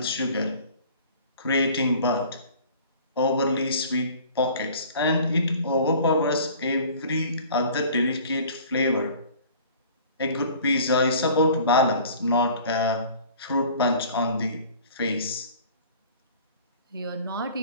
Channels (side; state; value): both; inverted; correlation -0.48